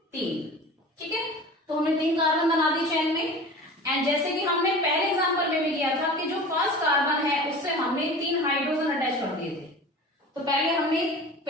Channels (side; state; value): both; normal; correlation 0.37